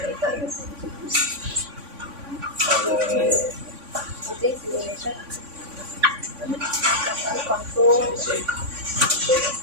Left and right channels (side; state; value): left; late; 3.5 ms